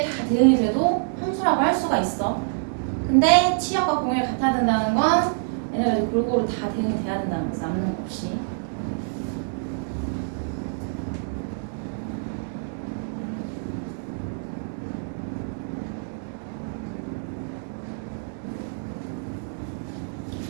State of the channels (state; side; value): silent; left; digital silence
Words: 다 대응이 돼도 함수라고 할 수가 있어. 근데 치역과 공역이 같아야 된다는 건 얘네가 골고루 다 대응이 돼야 된다는 거지. 남는 거 없이.